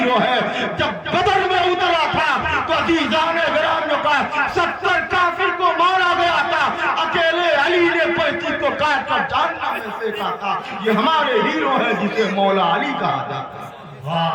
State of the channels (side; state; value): both; identical; correlation 1.00